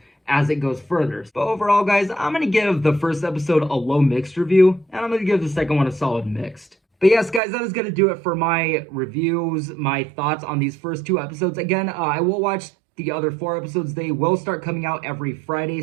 as it goes further. But overall, guys, I'm going to give the first episode a low mixed review, and I'm going to give the second one a solid mixed. But yes, guys, that is going to do it for my reviews, my thoughts on these first 2 episodes. Again, I will watch the other 4 episodes. They will start coming out every Friday,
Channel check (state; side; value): drops out; left; at 7.4 s